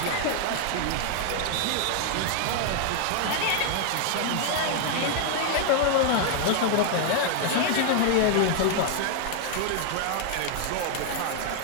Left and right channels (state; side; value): different; both; correlation 0.00